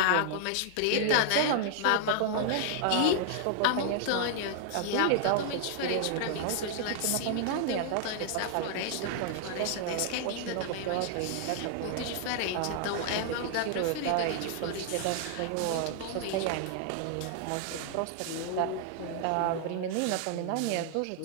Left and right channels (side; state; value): both; different; correlation -0.01